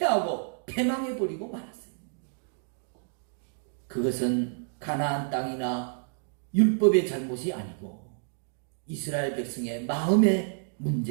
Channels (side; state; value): left; silent; digital silence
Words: 패망해버리고 말았어요. 그것은 가나안 땅이나 율법의 잘못이 아니고 이스라엘 백성의 마음에